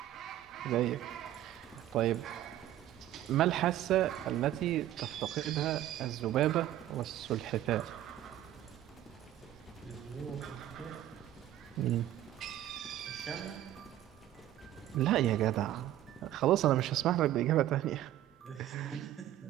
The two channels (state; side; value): quieter; left; 12.9 dB